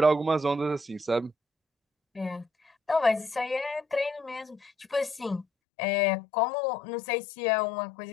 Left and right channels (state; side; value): drops out; right; at 5.5 s